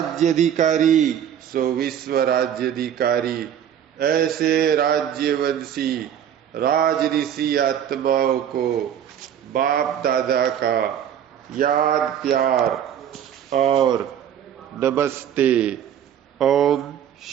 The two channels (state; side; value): quieter; left; 9.6 dB